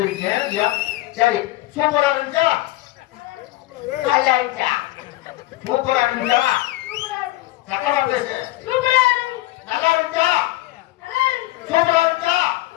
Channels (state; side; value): quieter; right; 18.2 dB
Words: சரி சூப்பரா இருந்துச்சா? நல்லா இருந்துச்சா? சூப்பரா இருந்துச்சா? சத்தமா பேசு. நல்லா இருந்துச்சா? சூப்பரா இருந்துச்சா?